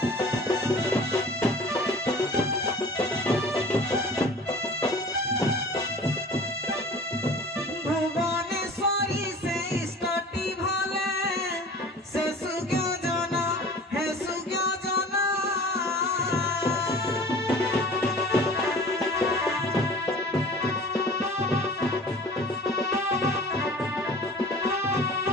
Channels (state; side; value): normal; both; correlation 0.43